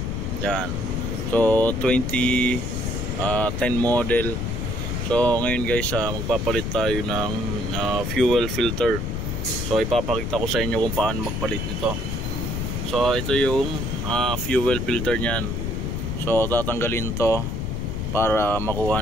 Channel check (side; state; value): left; noise; rumble, 2 dB below the sound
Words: Yan. So 2010 model. So ngayon guys, magpapalit tayo ng fuel filter. So ipapakita ko sa inyo kung paano magpalit nito. So ito yung fuel filter niyan. So tatanggalin to para makuha